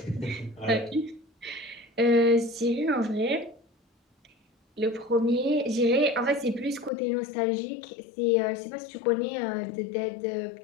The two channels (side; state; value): right; drops out; at 6.9 s